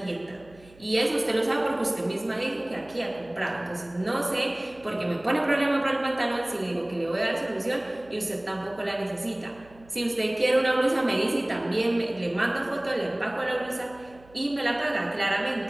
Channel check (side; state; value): right; noise; hum, 25 dB below the sound